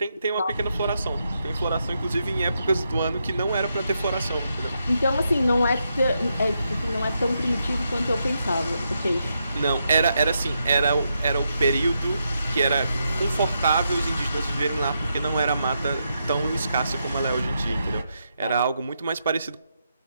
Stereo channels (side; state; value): both; inverted; correlation -0.83